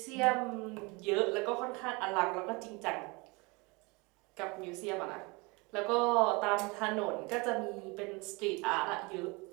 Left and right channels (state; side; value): quieter; left; 27.0 dB